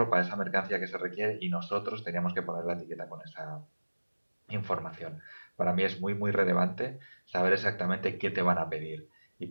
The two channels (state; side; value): inverted; both; correlation -1.00